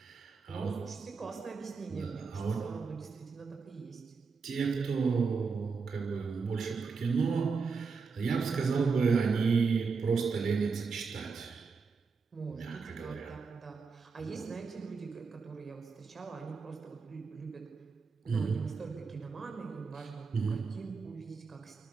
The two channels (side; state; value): left; quieter; 5.0 dB